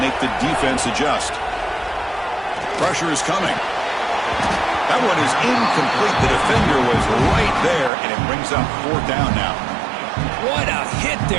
make the defense adjust. Pressure is coming. That one is incomplete. The defender was right there, and it brings up 4th down now. What a hit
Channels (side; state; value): left; drops out; at 7.9 s